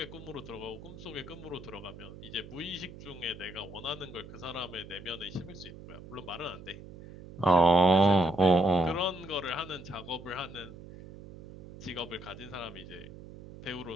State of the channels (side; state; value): right; noise; hum, 15 dB below the sound